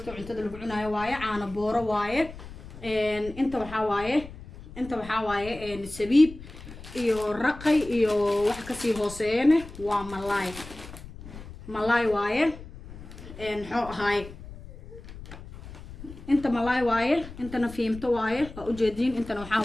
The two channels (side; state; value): left; noise; rumble, 15 dB below the sound